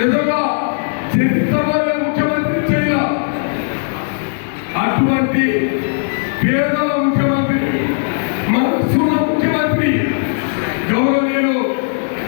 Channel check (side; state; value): right; silent; digital silence